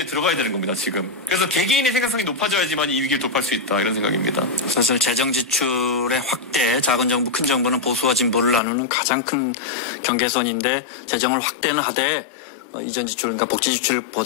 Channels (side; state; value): right; drops out; at 8.6 s